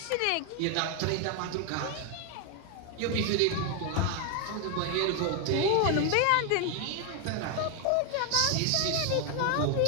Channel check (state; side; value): different; both; correlation 0.01